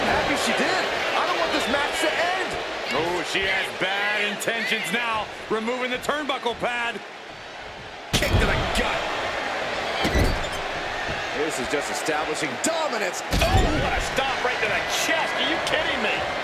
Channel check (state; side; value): identical; both; correlation 1.00